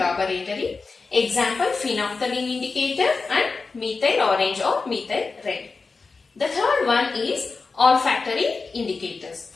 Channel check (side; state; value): right; quieter; 4.3 dB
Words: Example, phenolphthalein indicator and methyl orange or methyl red. The third one is olfactory indicators.